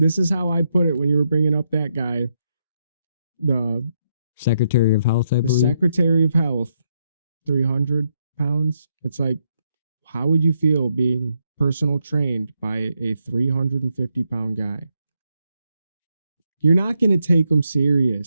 is how I put it when you were bringing up that guy, the Secretary of Health. I believe. The Secretary of Health, 300 pounds. It's like, how would you feel being personal trained by a 350-pound guy? You're not going to take them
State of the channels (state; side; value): inverted; both; correlation -0.79